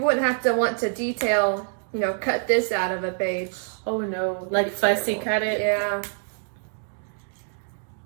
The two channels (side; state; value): left; silent; digital silence